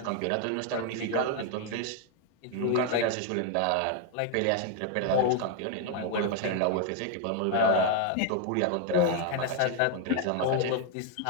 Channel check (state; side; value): different; both; correlation 0.00